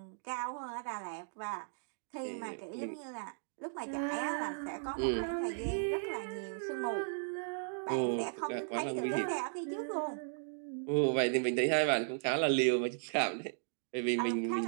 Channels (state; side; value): silent; left; digital silence